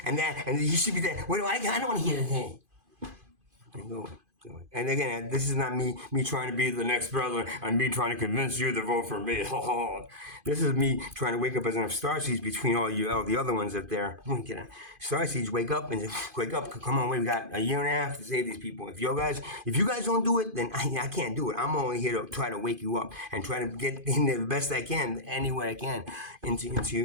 and that, and he should be that. What do I don't want to hear that. And go away. And again, this is not me trying to be the next brother and me trying to convince you to vote for me. This is me trying to wake up as enough starseeds between all the other ones up there. Starseeds, wake up. Come on, we got a year and a half to save these people. If you guys don't do it, then I can't do it. I'm only here to try to wake you up and try to get in there the best I can, any way I can, into.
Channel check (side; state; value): left; late; 2.5 ms